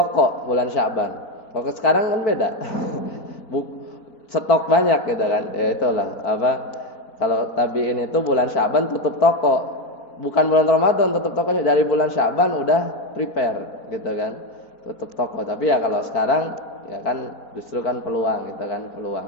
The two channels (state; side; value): late; right; 4.3 ms